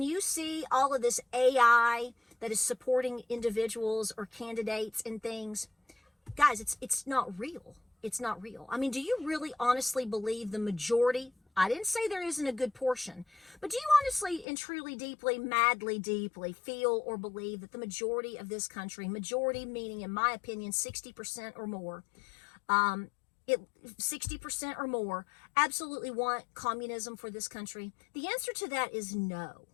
you see all of this AI that is supporting individuals or candidates and things, guys, it's not real. It's not real. I mean, do you really honestly believe the majority? I didn't say there isn't a good portion, but do you honestly and truly, deeply, madly, deeply feel or believe that the majority of this country, majority meaning, in my opinion, 60% or more, 60% or more, absolutely want communism for this country? The answer to that is no.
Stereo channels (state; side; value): drops out; right; at 14.5 s